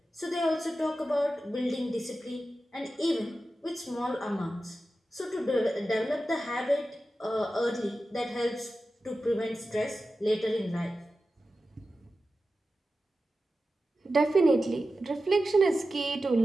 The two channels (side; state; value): both; normal; correlation 0.93